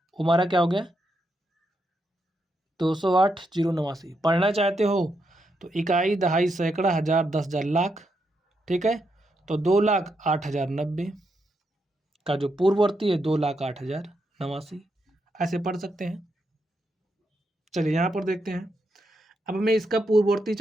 हमारा क्या हो गया 208 0 89। पढ़ना चाहते हो तो इकाई, दहाई, सैकड़ा, हज़ार, 10,000, लाख, ठीक है। तो 2,08,090 का जो पूर्ववर्ती है 2,08,089, ऐसे पढ़ सकते हैं। चलिए यहाँ पर देखते हैं। अब हमें इसका पूर्ववर्ती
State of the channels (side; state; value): both; normal; correlation 0.82